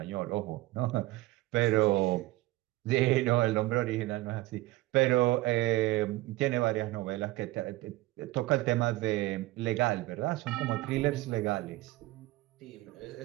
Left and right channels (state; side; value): quieter; left; 18.4 dB